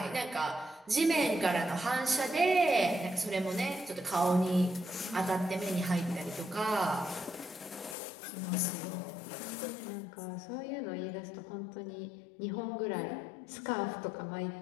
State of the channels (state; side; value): drops out; right; at 8.0 s